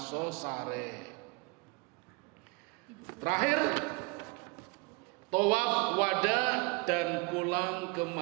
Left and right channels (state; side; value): quieter; left; 26.6 dB